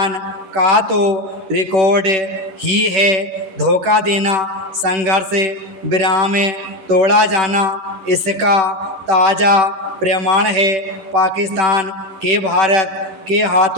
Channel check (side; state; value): left; late; 10 ms